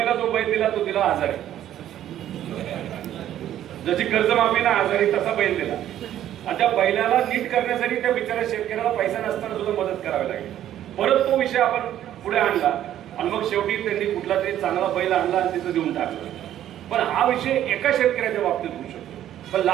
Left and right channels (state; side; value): quieter; left; 11.7 dB